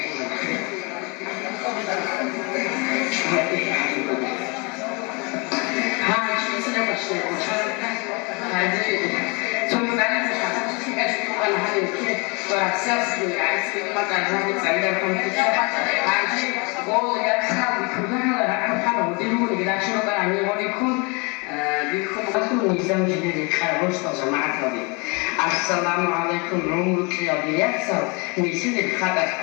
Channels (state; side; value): quieter; right; 30.1 dB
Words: سياسي عايز ما تعرفين تعلمكم عايز قول يا أصحاب كلنا راح نحاول نديروا كذا شنو بقى نقول لكم بكم أصلا نظام جديد كاربوس جماعة هذه السلام عليكم رمضان يا بيحصل نسيت الخطأ